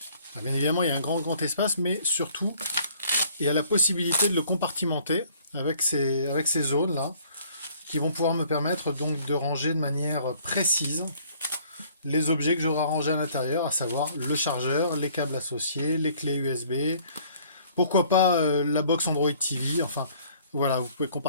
bien évidemment, il y a un grand espace, mais surtout, il y a la possibilité de le compartimenter avec ces zones-là qui vont pouvoir me permettre donc de ranger de manière précise les objets que j'aurai rangés à l'intérieur, à savoir le chargeur, les câbles associés, les clés USB, pourquoi pas la box Android TV, enfin voilà, vous pouvez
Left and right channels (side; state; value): both; inverted; correlation -0.58